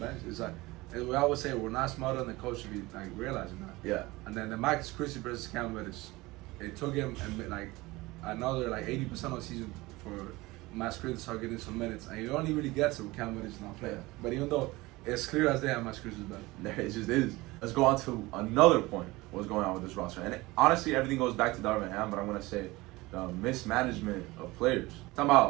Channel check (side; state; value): left; quieter; 21.0 dB